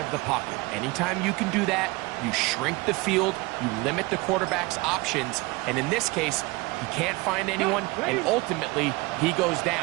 the pocket. Anytime you can do that, you shrink the field, you limit the quarterback's options, and in this case, he can't find anyone, and ultimately, he goes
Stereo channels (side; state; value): left; quieter; 23.6 dB